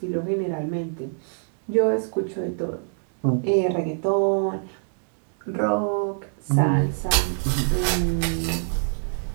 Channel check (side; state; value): left; silent; 62 dB below the other